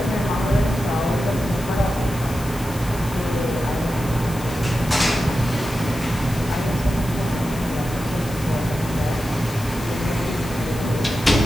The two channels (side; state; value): left; noise; hiss, 15 dB below the sound